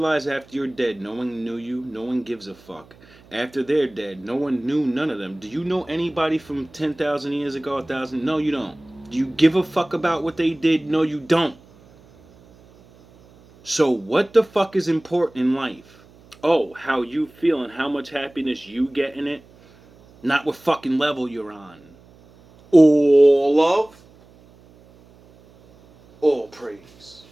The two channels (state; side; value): noise; right; hum, 26 dB below the sound